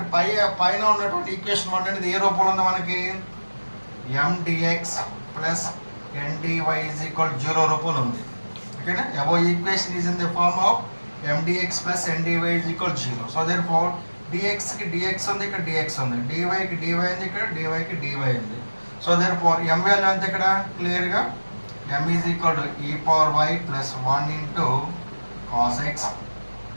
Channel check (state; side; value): inverted; both; correlation -1.00